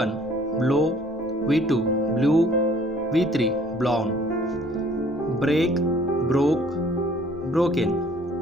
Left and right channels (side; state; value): both; normal; correlation 0.57